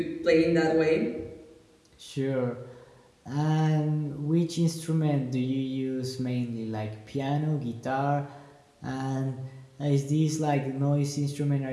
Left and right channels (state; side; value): identical; both; correlation 1.00